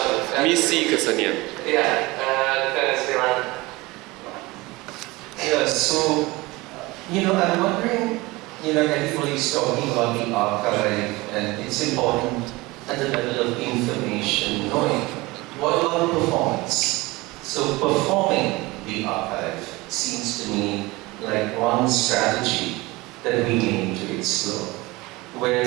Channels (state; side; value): quieter; left; 21.9 dB